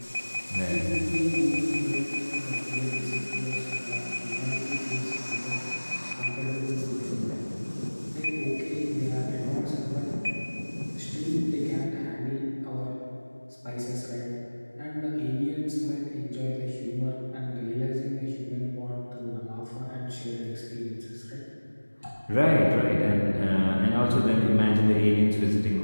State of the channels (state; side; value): inverted; both; correlation -1.00